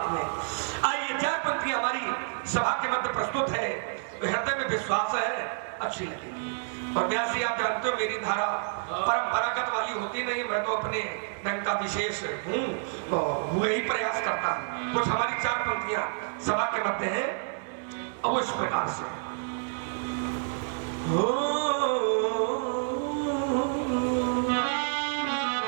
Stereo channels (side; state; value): left; silent; 59 dB below the other